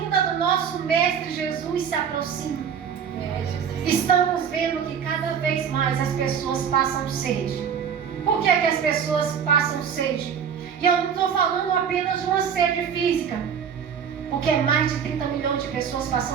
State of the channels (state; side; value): quieter; left; 7.6 dB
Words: do nosso Mestre Jesus se aproxima. Estamos vendo que cada vez mais as pessoas passam sede. Por que é que as pessoas passam sede? E eu não estou falando apenas de uma sede física, porque é mais de 30 milhões de pessoas